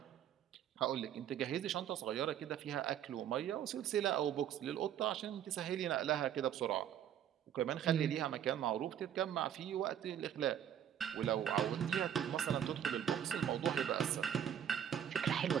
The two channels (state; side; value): quieter; left; 9.8 dB